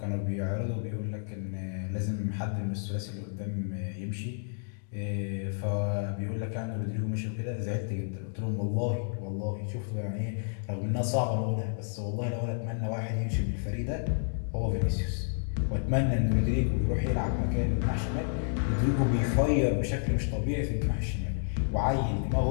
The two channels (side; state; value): right; silent; digital silence